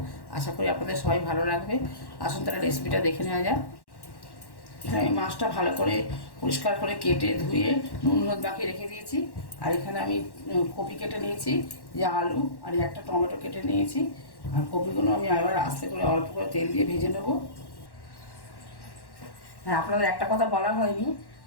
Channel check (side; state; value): right; late; 1.1 ms